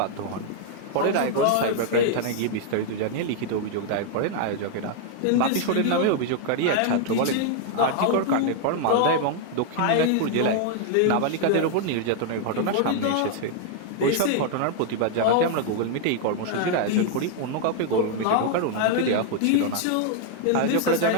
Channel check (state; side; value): different; both; correlation 0.00